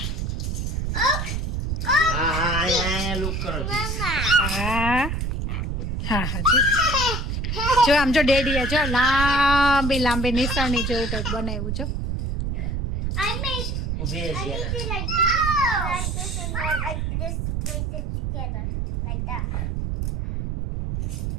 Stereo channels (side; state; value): right; noise; rumble, 2 dB below the sound